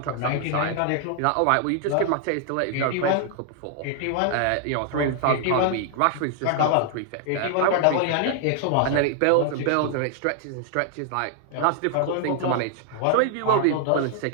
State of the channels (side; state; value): both; different; correlation 0.00